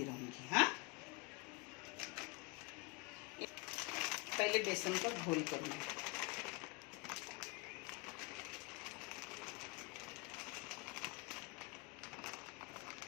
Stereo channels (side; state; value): right; quieter; 28.2 dB